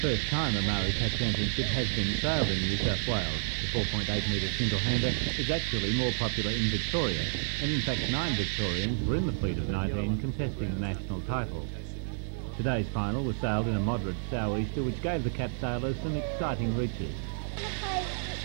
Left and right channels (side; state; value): left; silent; digital silence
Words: the first time a Maori Cat Championship has been sailed in New South Wales. The 4.8 metre single-hander is actually more popular in Victoria, and in fact 9 Victorians were in the fleet of 19 contesting the national title. Today's final was sailed in a moderate sou'easter, which gave the Cat sailors some exciting reaches.